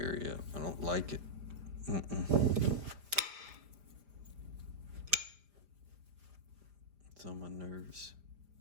I don't like it. It's on my nerves.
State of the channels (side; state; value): left; late; 5.0 ms